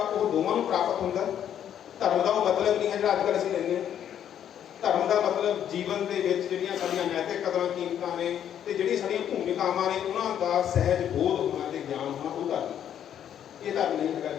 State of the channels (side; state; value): right; quieter; 9.8 dB